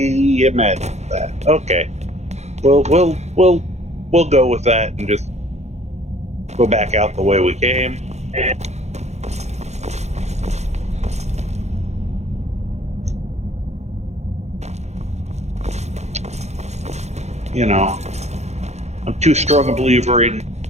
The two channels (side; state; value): left; late; 0.32 ms